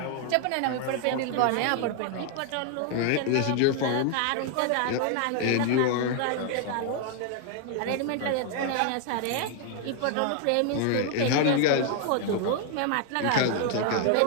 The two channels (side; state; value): both; different; correlation 0.00